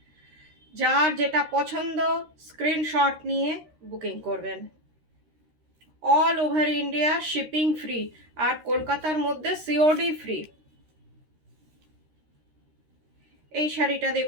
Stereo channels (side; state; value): left; late; 13 ms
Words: যার যেটা পছন্দ স্ক্রিনশট নিয়ে বুকিং করবেন। All over India shipping free, আর কলকাতার মধ্যে সিওডি ফ্রি। এই শাড়িটা